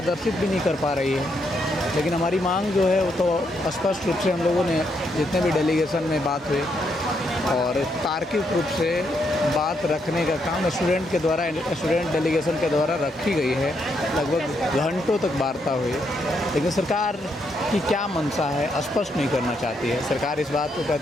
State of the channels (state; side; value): normal; both; correlation 0.77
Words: भी नहीं कर पा रही है। लेकिन हमारी मांग जो है वो तो स्पष्ट रूप से हम लोगों ने जितने भी डेलीगेशन में बात हुई, और तार्किक रूप से बात रखने का काम स्टूडेंट डेलीगेशन के द्वारा रखी गई है। लगभग घंटों तक वार्ता हुई, लेकिन सरकार की क्या मंशा है स्पष्ट नहीं करना चाहती है। सरकार इस बात को